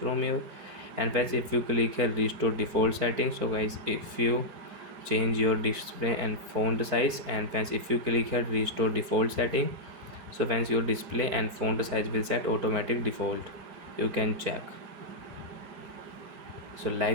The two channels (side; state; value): left; late; 4.5 ms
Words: here. And friends, if you click here restore default settings, so guys, if you change your display and font size, and friends, if you click here restore default setting, so friends, your display and font size will set automatic default. You can check. So